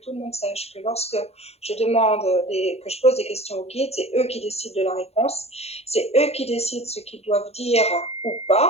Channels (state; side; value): late; right; 0.30 ms